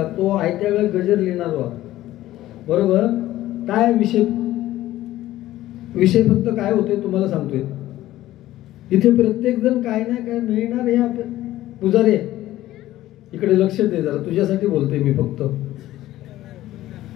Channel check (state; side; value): quieter; right; 15.0 dB